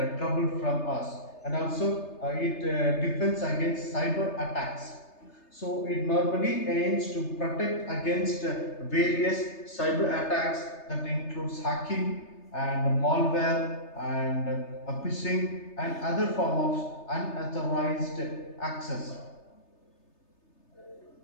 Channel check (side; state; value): right; late; 3.3 ms